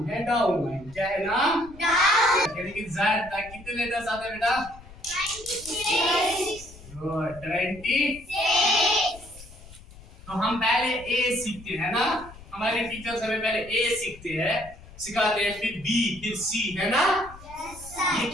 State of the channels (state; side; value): noise; left; rumble, 19 dB below the sound